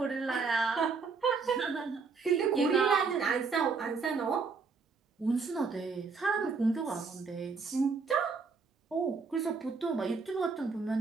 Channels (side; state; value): left; quieter; 4.8 dB